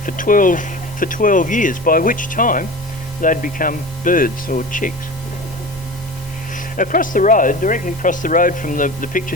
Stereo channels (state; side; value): normal; both; correlation 0.33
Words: for 12 years, by which time they'd become birds or chicks. Across the road, directly across the road from the picture